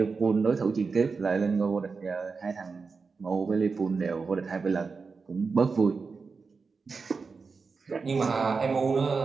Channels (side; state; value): left; quieter; 4.8 dB